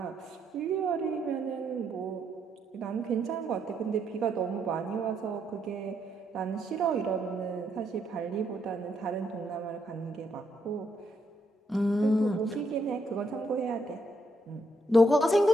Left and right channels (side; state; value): both; normal; correlation 0.75